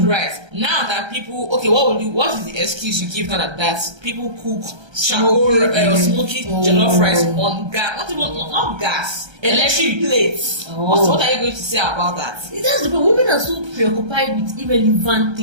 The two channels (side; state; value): left; late; 1.3 ms